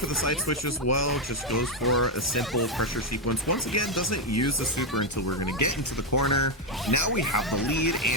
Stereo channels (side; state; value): both; normal; correlation 0.04